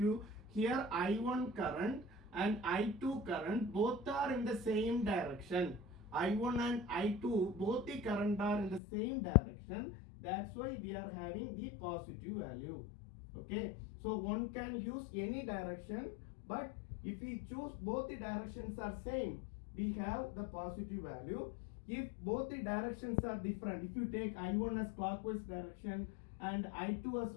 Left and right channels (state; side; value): drops out; right; at 8.8 s